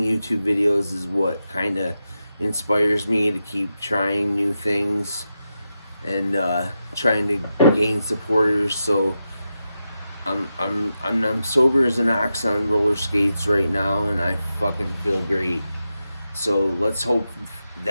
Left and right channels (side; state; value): both; inverted; correlation -0.88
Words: YouTube videos is, what kind of inspires me to keep trying new things and trying to gain supporters. So I'm sober as an ox on roller skates right now, and I fucking feel great. So let's hope